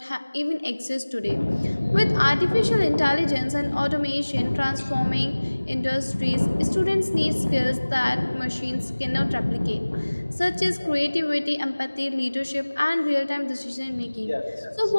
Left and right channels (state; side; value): inverted; both; correlation -1.00